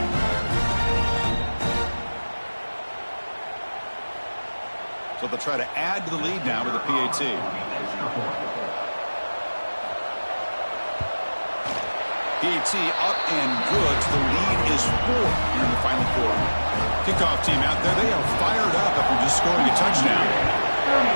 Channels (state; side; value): inverted; both; correlation -1.00